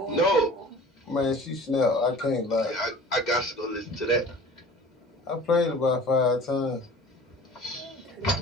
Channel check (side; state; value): both; normal; correlation 0.43